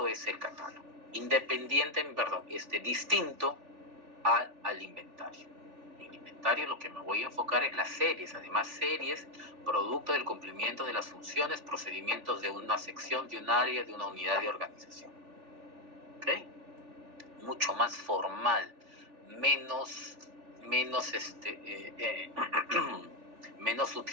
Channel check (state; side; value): late; left; 3.4 ms